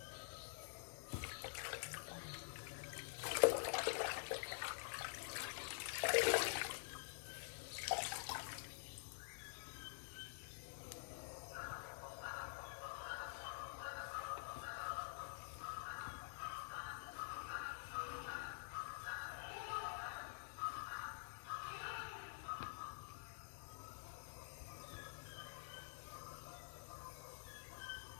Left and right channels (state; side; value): silent; right; digital silence